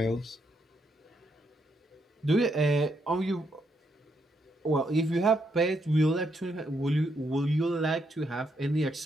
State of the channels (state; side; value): normal; both; correlation 0.77